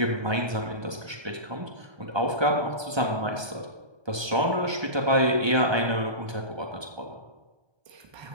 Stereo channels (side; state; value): left; late; 1.2 ms